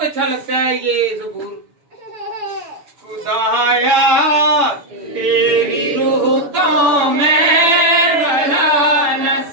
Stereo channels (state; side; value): late; left; 6.8 ms